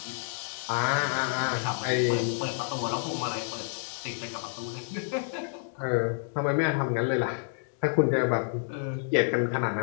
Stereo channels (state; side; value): silent; right; digital silence